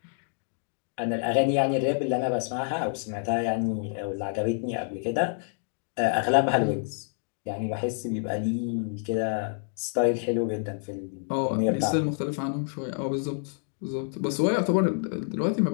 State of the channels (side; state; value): right; silent; digital silence